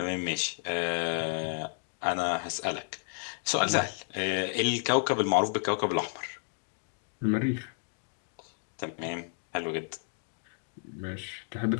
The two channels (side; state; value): right; silent; 57 dB below the other